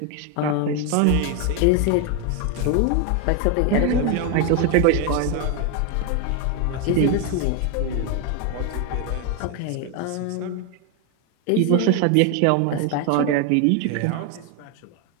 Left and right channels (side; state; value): both; different; correlation 0.01